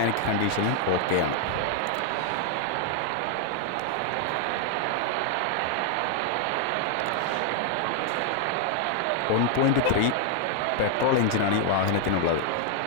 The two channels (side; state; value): both; different; correlation 0.00